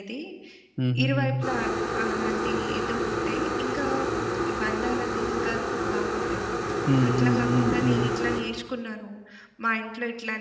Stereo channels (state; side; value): identical; both; correlation 1.00